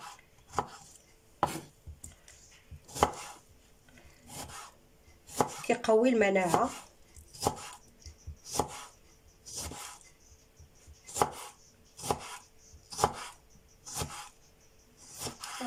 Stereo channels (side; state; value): both; identical; correlation 1.00